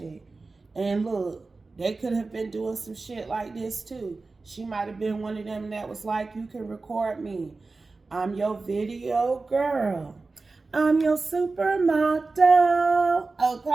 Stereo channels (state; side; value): quieter; left; 3.7 dB